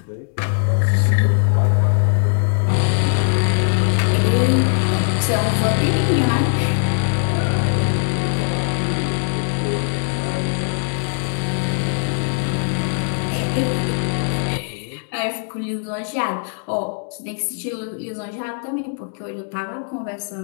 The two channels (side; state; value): right; silent; digital silence